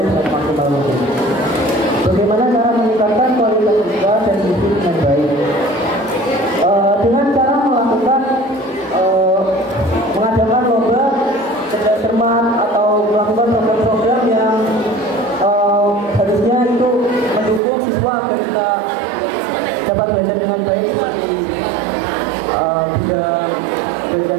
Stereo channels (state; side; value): drops out; left; at 17.6 s